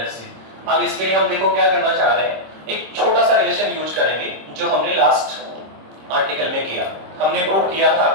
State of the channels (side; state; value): left; late; 26 ms